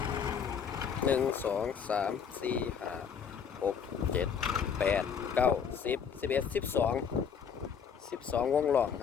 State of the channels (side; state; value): right; quieter; 7.1 dB